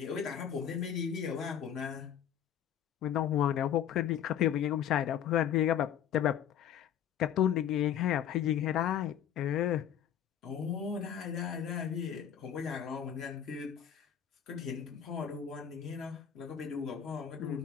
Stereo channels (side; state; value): right; quieter; 9.5 dB